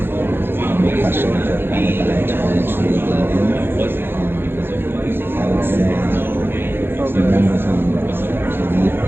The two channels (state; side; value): late; left; 0.10 ms